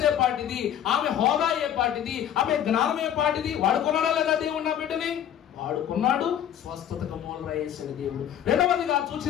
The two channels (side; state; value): right; quieter; 10.0 dB